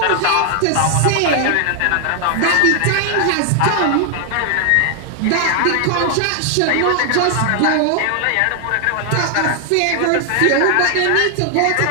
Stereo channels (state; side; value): different; both; correlation 0.00